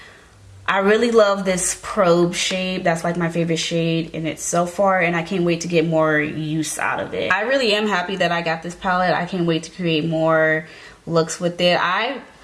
I really love this probe shade. That's like my favorite shade in it so far, and I can't wait to get more use out of it. I really am happy that I got this palette. I can't wait to create more looks with it. I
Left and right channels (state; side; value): identical; both; correlation 1.00